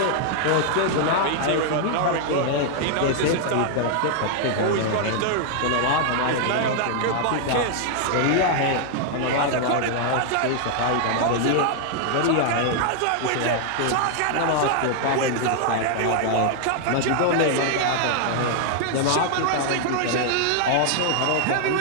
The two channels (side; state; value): both; different; correlation 0.00